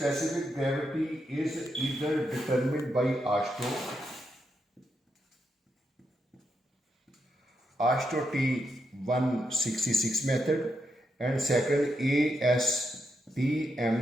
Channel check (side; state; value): both; normal; correlation 0.83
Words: gravity is either determined by AASHTO T166 method, and second AASTMD